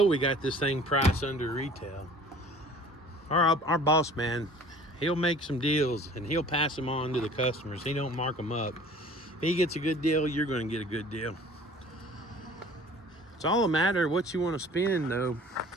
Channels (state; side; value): normal; both; correlation 0.48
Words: we got this thing priced under retail. Our boss man, he'll make some deals and he'll pass them on to the customers. He don't mark them up. If he gets a good deal, you're going to get a good deal. It's all a matter of what you want to spend, though.